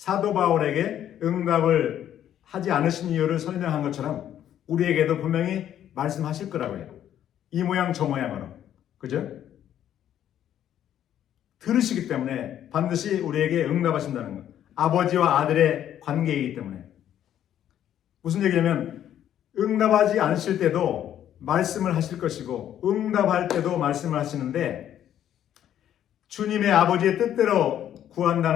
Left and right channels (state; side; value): quieter; right; 10.7 dB